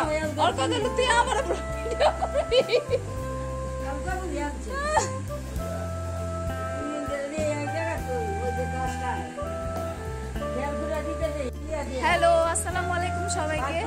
তুই আমার হ্যালো আসসালামু আলাইকুম সবাইকে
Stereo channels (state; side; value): identical; both; correlation 1.00